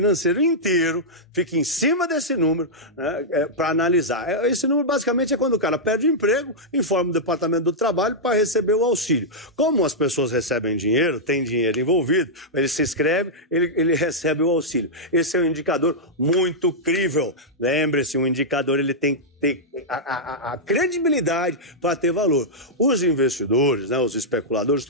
inteiro fica em cima desse número, né, para analisar. Esse número basicamente é quando o cara perde o emprego, informa o Departamento do Trabalho para receber o auxílio. Como as pessoas recebem dinheiro, tem dinheiro envolvido, ele se inscreve, ele recebe o auxílio. Esse é um indicador muito crível. Lembre-se, um indicador ele tem que ter a credibilidade para ter valor. Os investidores, né, os especuladores,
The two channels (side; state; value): both; normal; correlation -0.08